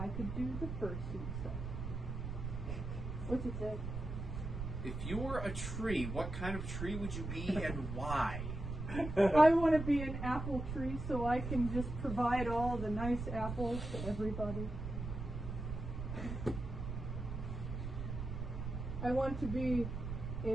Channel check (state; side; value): noise; right; rumble, 5 dB below the sound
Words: could do the fursuit stuff. What's it say? If you were a tree, what kind of tree would you be and why? I want to be an apple tree so I can just provide all the nice apples to everybody. I want to be